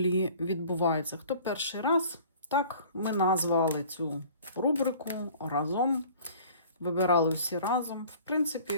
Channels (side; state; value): both; inverted; correlation -0.48